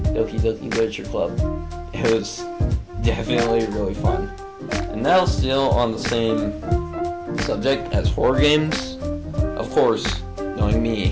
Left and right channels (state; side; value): identical; both; correlation 1.00